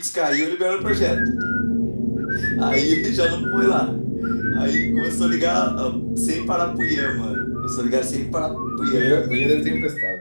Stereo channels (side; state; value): both; inverted; correlation -1.00